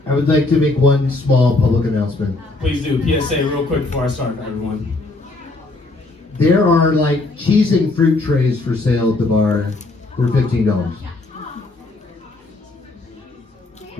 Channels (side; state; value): right; quieter; 3.1 dB